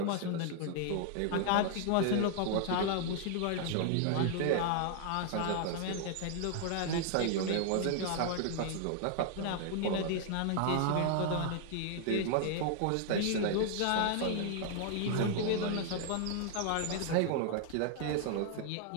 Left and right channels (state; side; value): different; both; correlation 0.00